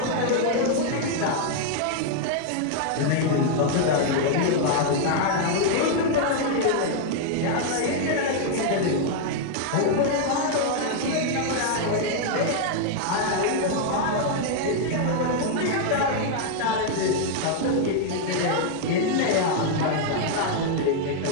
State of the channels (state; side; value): different; both; correlation 0.00